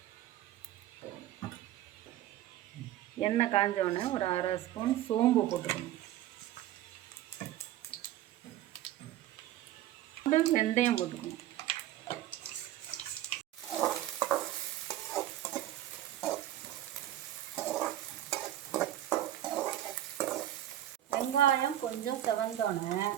எண்ணெய் காஞ்சோடனே ஒரு 1/2 ஸ்பூன் சோம்பு போட்டுக்கணும். வெந்தயம் போட்டுக்கணும். வெங்காயம் கொஞ்சம் செவந்தோடனே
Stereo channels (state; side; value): quieter; left; 13.1 dB